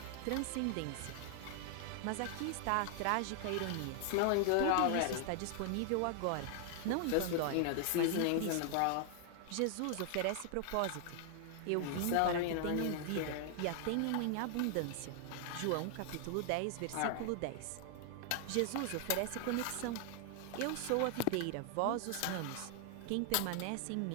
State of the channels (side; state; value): both; different; correlation 0.00